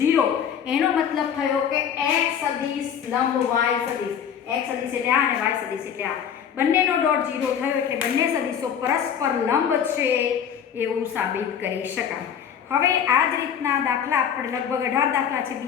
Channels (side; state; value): right; quieter; 8.3 dB